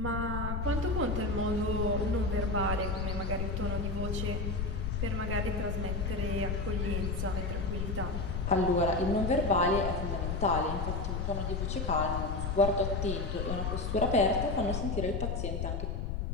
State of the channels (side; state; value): left; noise; rumble, 1 dB below the sound